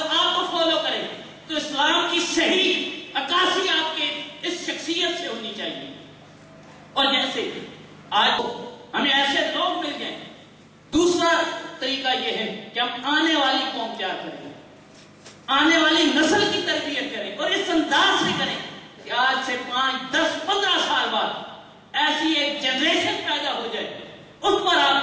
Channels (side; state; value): both; identical; correlation 1.00